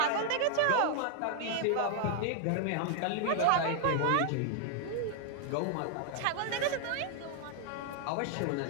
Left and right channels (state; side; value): different; both; correlation 0.00